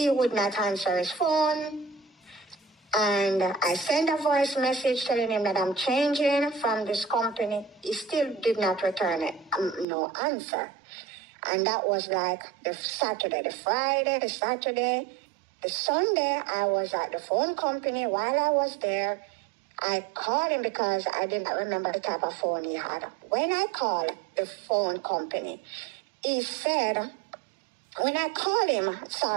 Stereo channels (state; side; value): drops out; left; at 9.9 s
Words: would not answer his phone. And I sent a voice message telling him that I'm changing from this company. He still did not return it, no answer. And that was like the Saturday, the Friday, the Saturday, the Sunday. I was at the phone company. While I was there, I called him because I did not remember the type of phone he had. When I called the phone company, he said, when I called